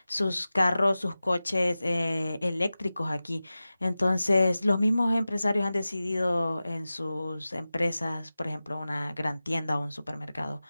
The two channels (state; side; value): inverted; both; correlation -0.96